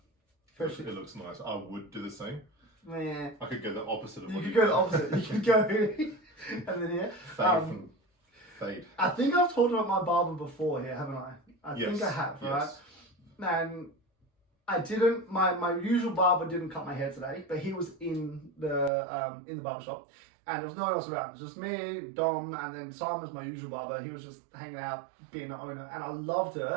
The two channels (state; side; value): drops out; left; at 18.9 s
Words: It looks nice. I would do the same. Yeah. I could go the opposite of you what could go the opposite. You could go and then here. Fade. I think I've talked about my barber before here, haven't I? I Yes. think I have, right? Yes. And I didn't. My usual barber didn't cut my hair today, but he was in the barber shop, and there was no one else around. It was just me, Dom, and then Simon's my usual barber. He was just hanging out, being the owner, and I loved it.